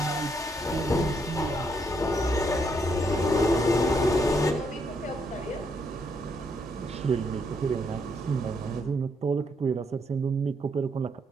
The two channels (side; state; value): both; normal; correlation 0.75